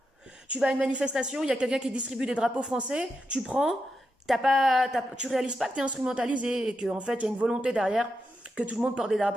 Tu vas à une manifestation, il y a quelqu'un qui distribue des drapeaux français, tu prends, tu réalises pas que t'es instrumentalisé, et qu'en fait, il y a une volonté derrière que tout le monde porte des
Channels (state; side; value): normal; both; correlation 0.86